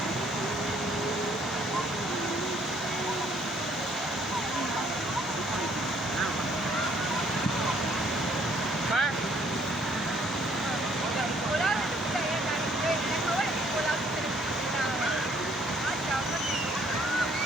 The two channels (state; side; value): normal; both; correlation 0.64